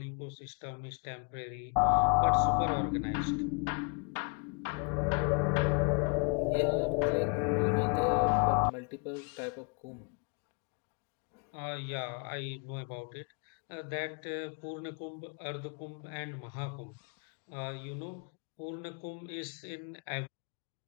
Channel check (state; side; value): quieter; right; 36.2 dB